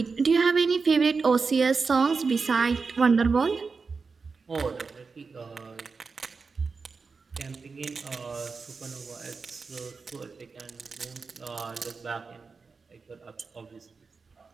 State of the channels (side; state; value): left; quieter; 4.7 dB